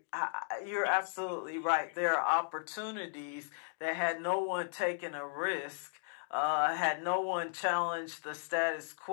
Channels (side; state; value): right; silent; digital silence